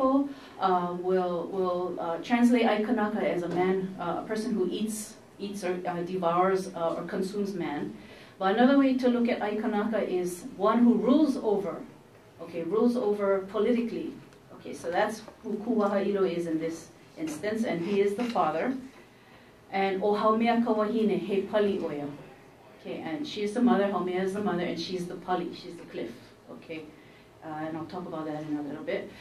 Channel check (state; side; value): identical; both; correlation 1.00